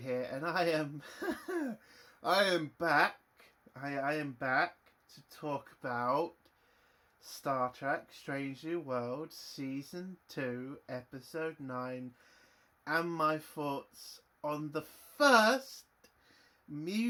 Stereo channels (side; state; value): both; identical; correlation 1.00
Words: and I am I am back. I am back to talk about Star Trek Strange New Worlds Season 2, Episode 9, and my thoughts on the first